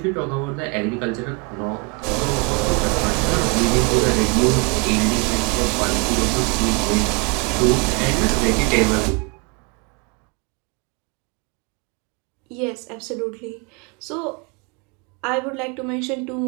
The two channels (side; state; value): left; quieter; 31.9 dB